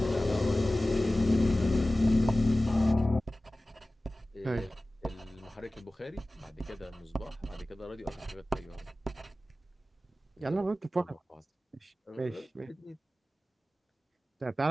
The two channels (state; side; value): normal; both; correlation 0.97